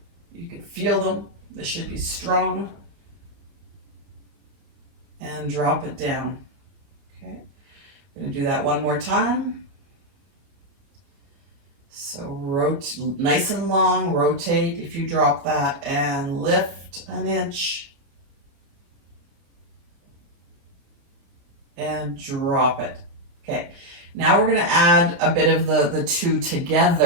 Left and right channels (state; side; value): late; left; 29 ms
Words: You can feel them. They should be strong. And drop it down. Okay, I'm going to do that one more time. So nice and long, rotate if you drop that, and lift an inch. And drop it. Okay, now we're going to add a bit of the two